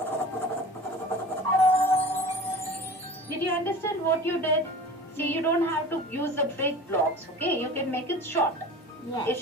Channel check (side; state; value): both; normal; correlation 0.38